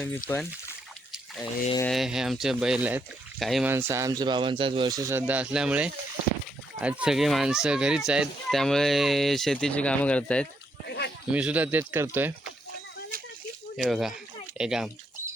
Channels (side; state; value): both; normal; correlation 0.76